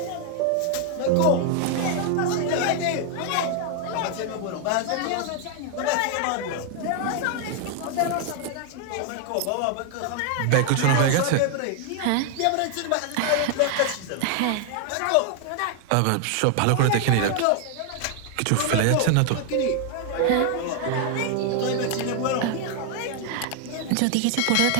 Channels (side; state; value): both; different; correlation 0.00